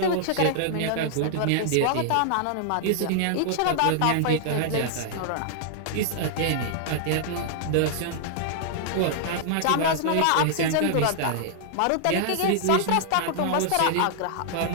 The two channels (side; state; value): both; different; correlation -0.01